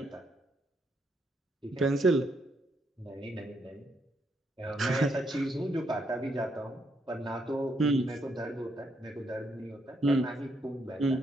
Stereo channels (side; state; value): both; normal; correlation 0.76